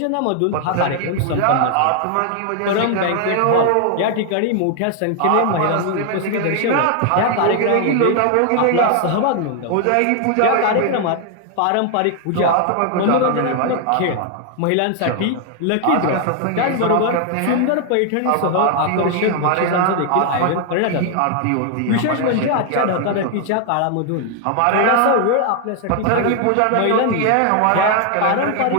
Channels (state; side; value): different; both; correlation 0.00